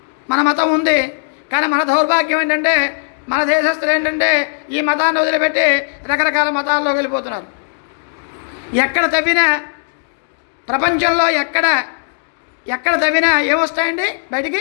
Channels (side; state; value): right; silent; digital silence